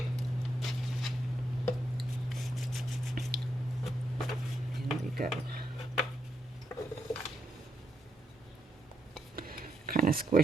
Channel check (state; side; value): normal; both; correlation 0.80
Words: There we go. Kind of